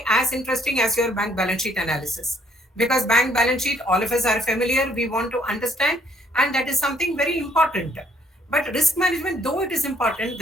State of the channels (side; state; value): both; normal; correlation 0.66